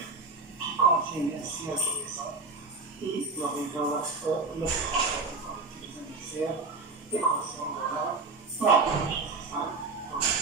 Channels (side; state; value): left; quieter; 3.8 dB